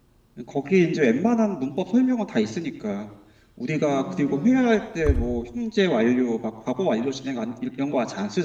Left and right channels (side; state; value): both; identical; correlation 1.00